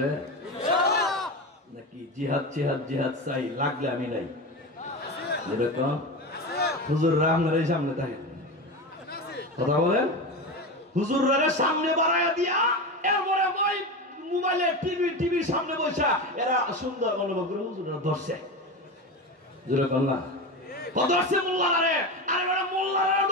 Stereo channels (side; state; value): both; normal; correlation 0.22